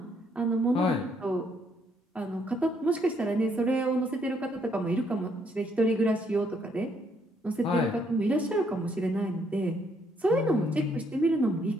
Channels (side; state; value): both; normal; correlation 0.71